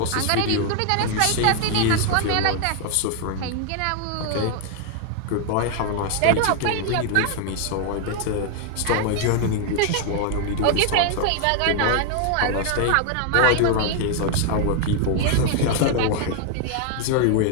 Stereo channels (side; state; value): both; different; correlation 0.01